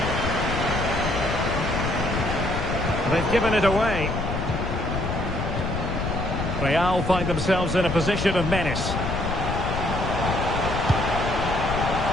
They've given it away. Real find themselves in a position of menace.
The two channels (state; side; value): noise; left; rumble, 3 dB below the sound